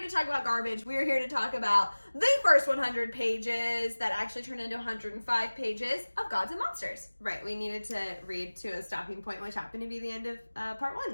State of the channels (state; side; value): inverted; both; correlation -1.00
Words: to talk about garbage. We're here to talk about the first 100 pages that actually turned into 105 pages of Gods and Monsters. Right. We needed to read to a stopping point, which happened to be the end of part